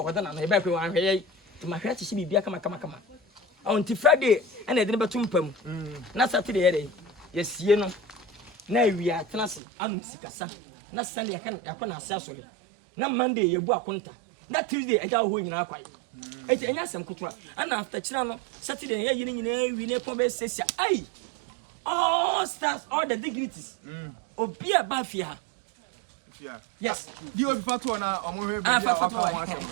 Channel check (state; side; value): drops out; left; at 9.6 s